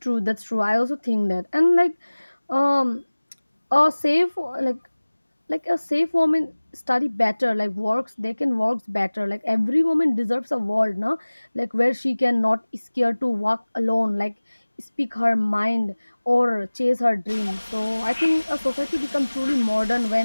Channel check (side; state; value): both; inverted; correlation -1.00